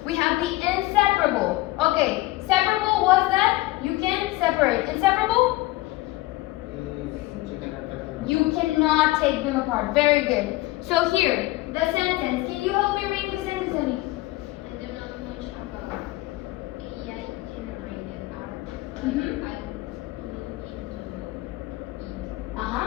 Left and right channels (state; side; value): quieter; right; 19.0 dB